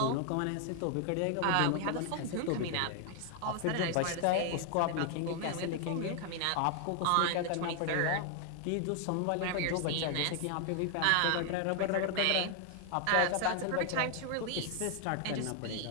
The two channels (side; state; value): both; different; correlation 0.00